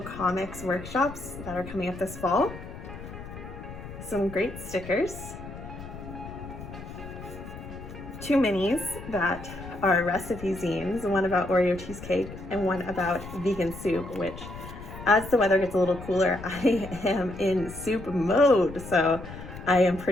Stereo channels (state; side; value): noise; left; rumble, 12 dB below the sound